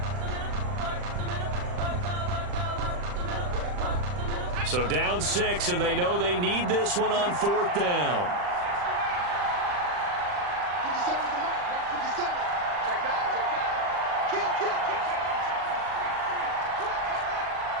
So down 6, and they know they need this one on fourth down. 57's the mark. Watch 57. Check back. Kill.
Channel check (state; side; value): late; left; 40 ms